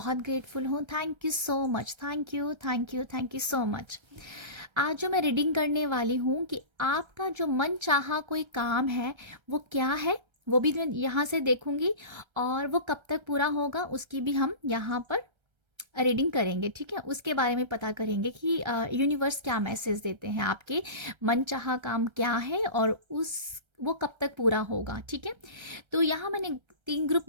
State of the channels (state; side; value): late; left; 1.3 ms